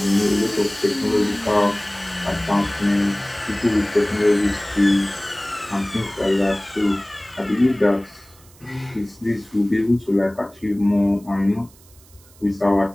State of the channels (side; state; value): right; noise; hiss, 26 dB below the sound